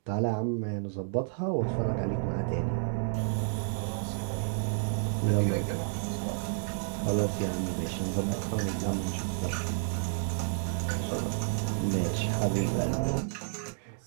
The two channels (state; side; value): silent; left; digital silence